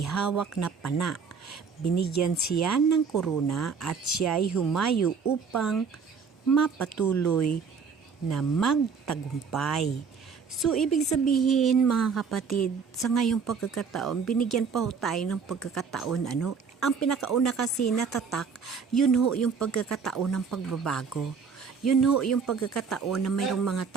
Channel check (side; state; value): left; quieter; 5.7 dB